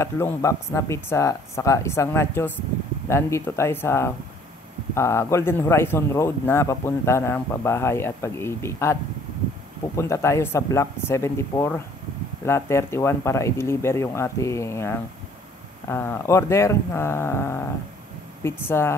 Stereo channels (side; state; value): both; normal; correlation 0.57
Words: box na pizza saka isang nachos. Nandito tayo sa Golden Horizon Road na papunta ng pabahay at Pag-ibig. At pupunta tayo sa Block 74, Lot 31 para i-deliver yung ating order na